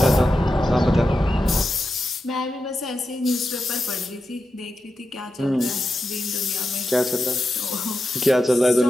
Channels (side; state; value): both; normal; correlation 0.89